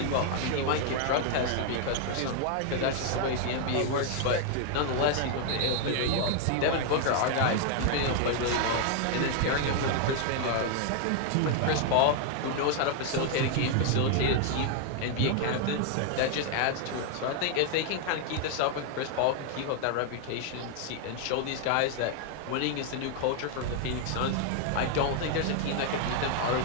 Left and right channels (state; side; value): different; both; correlation 0.00